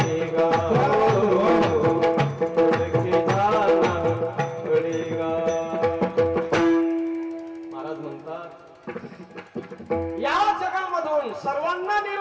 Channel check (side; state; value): both; identical; correlation 1.00